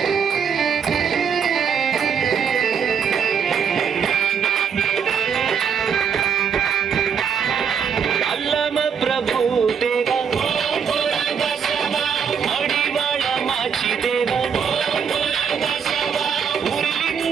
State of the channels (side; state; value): left; quieter; 7.0 dB